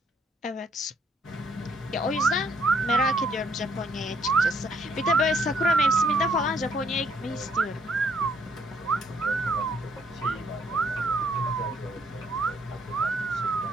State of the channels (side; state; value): both; normal; correlation 0.68